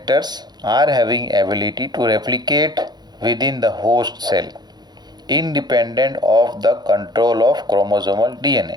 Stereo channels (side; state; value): left; late; 0.20 ms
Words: are having ability to replicate within the host cell independent of the control of chromosomal